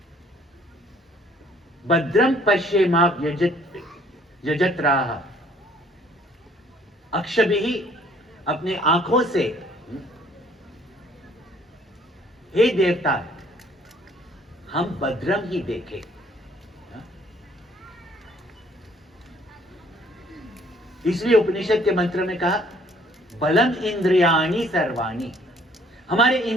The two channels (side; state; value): both; normal; correlation 0.60